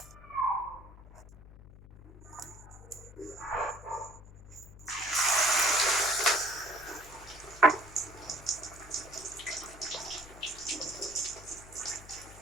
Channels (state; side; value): noise; left; hum, 18 dB below the sound